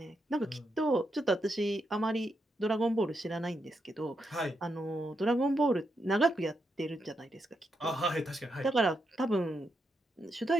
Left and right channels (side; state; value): both; normal; correlation 0.83